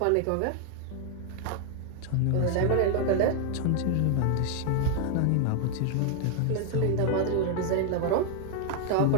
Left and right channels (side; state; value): both; different; correlation 0.00